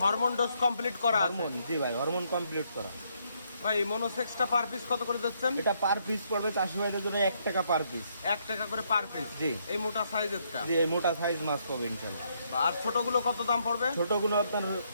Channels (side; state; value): both; inverted; correlation -0.73